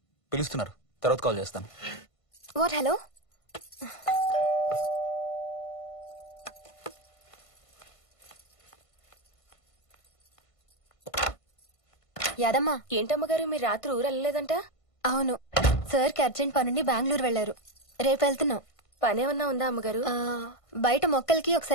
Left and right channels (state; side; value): late; right; 1.5 ms